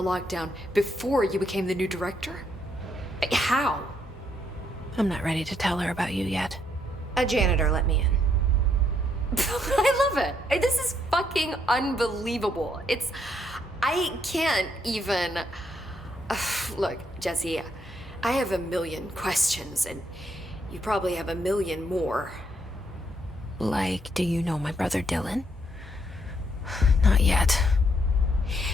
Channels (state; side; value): normal; both; correlation 0.73